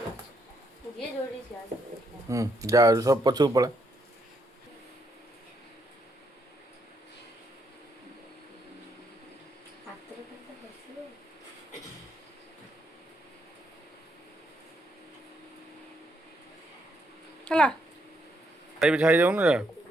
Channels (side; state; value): both; normal; correlation 0.76